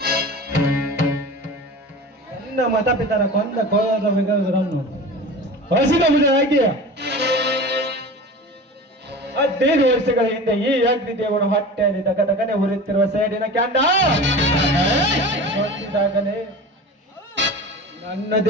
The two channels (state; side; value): normal; both; correlation 0.34